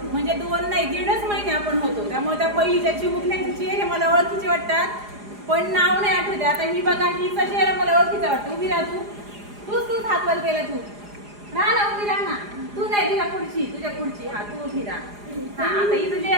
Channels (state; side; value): late; left; 4.9 ms